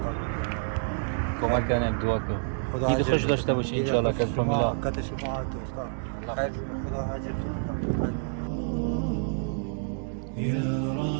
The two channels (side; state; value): left; silent; digital silence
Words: کمک کنه دعا کن عید خوش داشته باشی انشالله که از فامیلا وقت شما دوستان خیر خدا حاجت يا